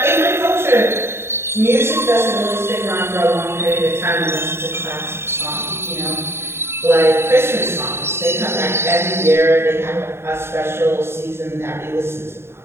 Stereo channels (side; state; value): left; late; 0.12 ms